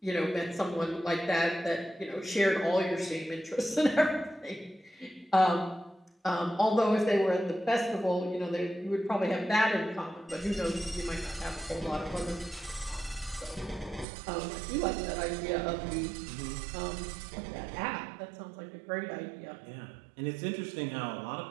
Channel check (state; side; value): drops out; left; at 14.1 s